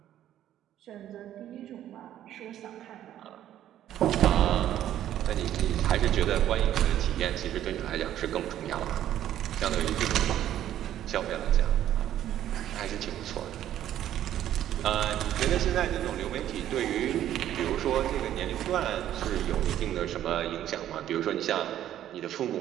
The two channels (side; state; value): left; quieter; 11.8 dB